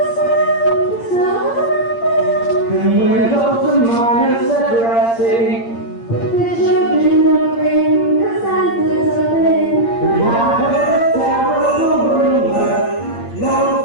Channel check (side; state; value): right; late; 8.7 ms